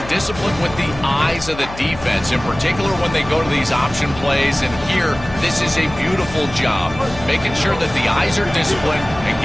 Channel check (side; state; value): left; noise; hum, 14 dB below the sound